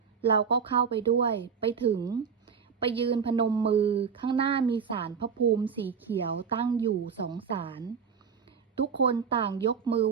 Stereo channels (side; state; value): left; quieter; 6.4 dB